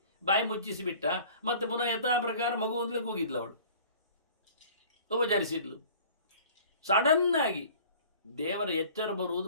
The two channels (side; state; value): both; inverted; correlation -0.47